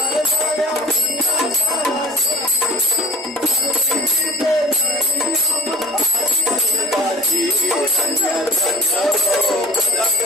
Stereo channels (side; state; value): both; normal; correlation 0.43